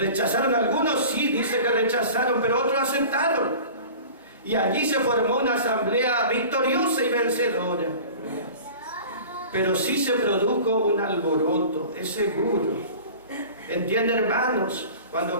algunos? Sí, dice que rechazaron, pero otros aceptaron. Y allí se formó una asamblea victoriosa y vencedora. Pero sí se produjo un alboroto, es seguro. ¿Entienden, hermanos? Cuando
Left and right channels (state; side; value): inverted; both; correlation -0.40